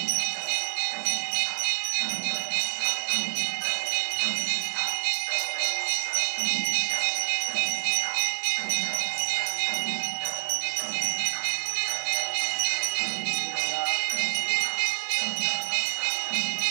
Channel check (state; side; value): silent; left; digital silence